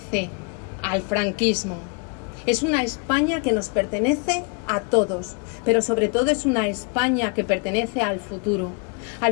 al franquismo, es una España que nos pertenece a todos, pero sobre todo es una España que pertenece al futuro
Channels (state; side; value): quieter; right; 35.3 dB